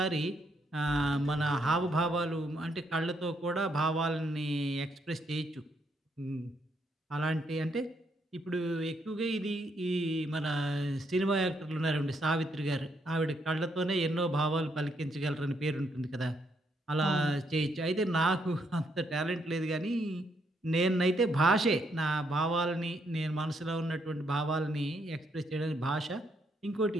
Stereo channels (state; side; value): normal; both; correlation 0.75